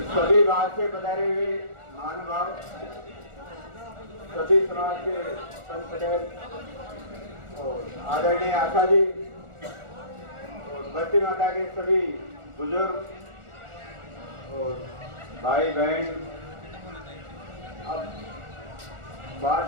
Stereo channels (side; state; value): left; late; 1.4 ms